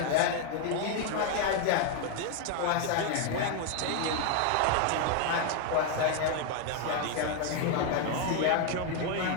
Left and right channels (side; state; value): both; different; correlation 0.01